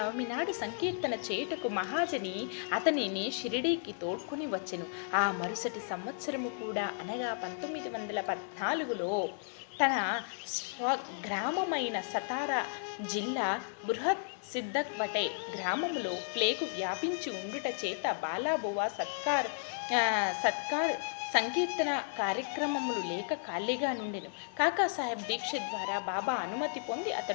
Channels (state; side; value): silent; right; digital silence